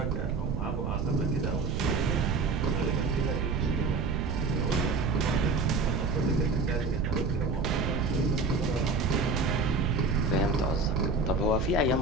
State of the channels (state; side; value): noise; right; rumble, 1 dB below the sound